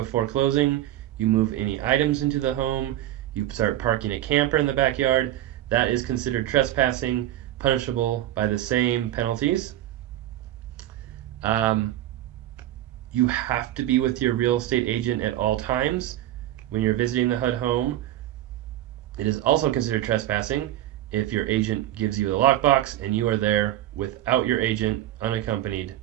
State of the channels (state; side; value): quieter; left; 13.5 dB